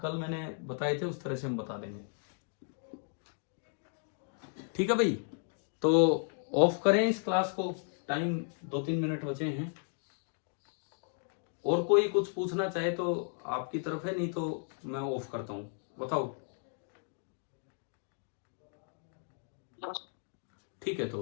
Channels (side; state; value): right; silent; 55 dB below the other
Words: कल मैंने बताए थे उस तरह से हम बता देंगे। ठीक है भाई, तो ऑफ करें इस क्लास को, टाइम 2-3 मिनट बचे हैं। और कोई कुछ पूछना चाहे तो आपकी तरफ है, नहीं तो मैं ऑफ करता हूं, बताओ। ठीक है,